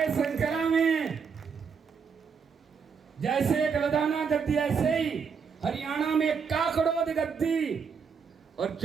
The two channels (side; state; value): left; quieter; 6.1 dB